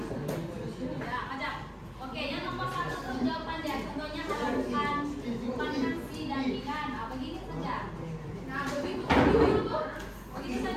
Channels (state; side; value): identical; both; correlation 1.00